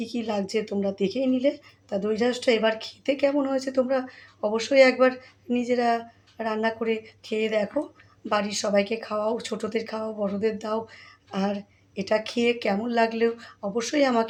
কি লাগছে তোমরা দেখেই নিলে। তা দই ঢ্যাঁড়সটা এবার খেতে কেমন হয়েছে তোমরা অবশ্যই একবার নিজেরা রান্না করে খেয়ে দেখো, বাড়ির সবাইকে খাওয়াও, ছোটোদের খাওয়াও, বড়োদের দাও। আর এটা খেয়ে কেমন লাগলেও অবশ্যই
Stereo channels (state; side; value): identical; both; correlation 1.00